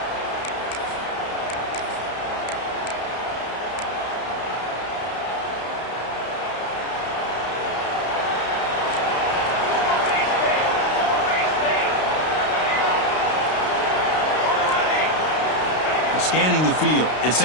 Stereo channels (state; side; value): late; right; 32 ms